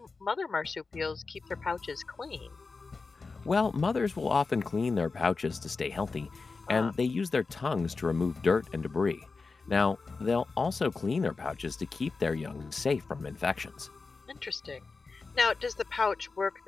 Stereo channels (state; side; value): quieter; right; 4.2 dB